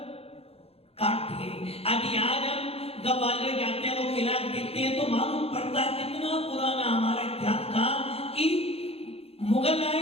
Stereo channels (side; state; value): right; late; 0.29 ms